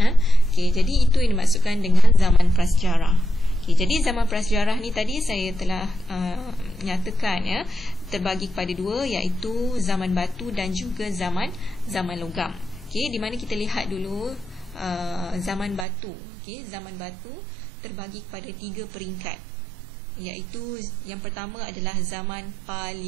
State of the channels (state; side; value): drops out; left; at 15.9 s